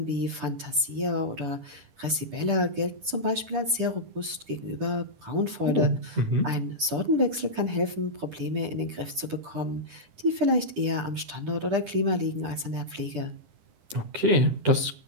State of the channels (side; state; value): left; late; 10 ms